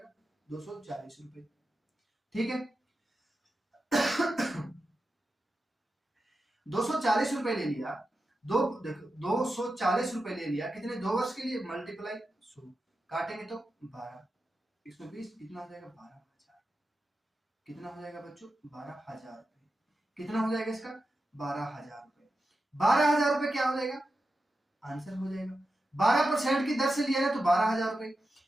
240 रुपए। ठीक है, 240 रुपए ले लिया। देखो 240 रुपए ले लिया, कितने? 2 वर्ष के लिए, मल्टीप्लाई 100, काटेंगे तो 12, 120, कितना हो जाएगा? 12,000। कितना हो जाएगा बच्चों? 12,000 रुपए। कितना हो जाएगा इसका? 12,000 रुपए। 12,000 रुपए क्या हो जाएगा? आंसर हो जाएगा। 12% की दर से लिया ना तो 12,000 रुपए।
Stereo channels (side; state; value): both; normal; correlation 0.91